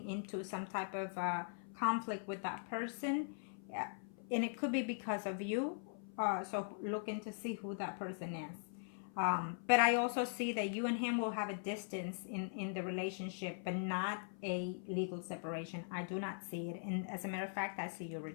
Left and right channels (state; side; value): silent; right; 50 dB below the other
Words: into some type of conflict with that person, and it could be because of you. So looking to see who that person is. But I also see that you and him will have a distance in the relationship, but not a legal separation. I do not see it. And as a matter of fact, I see you